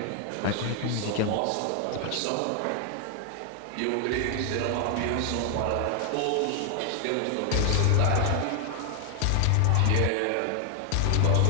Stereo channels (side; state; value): both; different; correlation 0.00